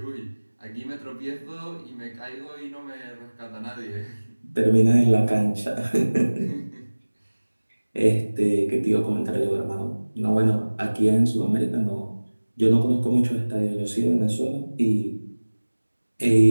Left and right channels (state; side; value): inverted; both; correlation -1.00